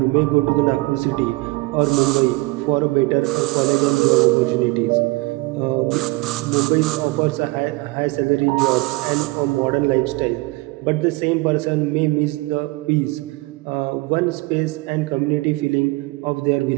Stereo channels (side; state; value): left; quieter; 23.1 dB